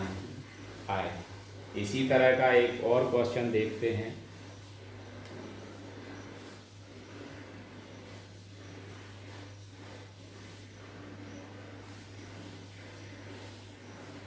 आएगा। इसी तरह का एक और क्वेश्चन देखते हैं।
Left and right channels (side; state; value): both; identical; correlation 1.00